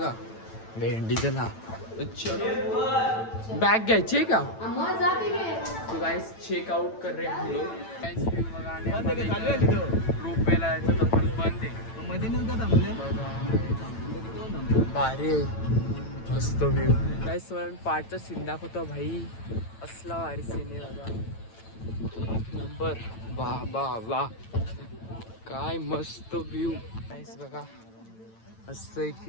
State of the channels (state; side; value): late; right; 9.0 ms